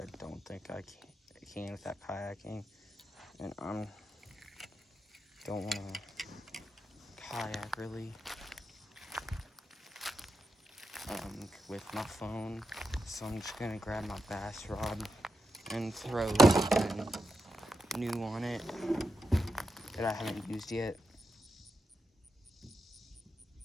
don't think I can with that kayaking. And I don't want to kayak really. with my phone. So I'm just gonna grab my bass rod and throw something new on it that I haven't used yet.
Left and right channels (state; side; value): normal; both; correlation 0.86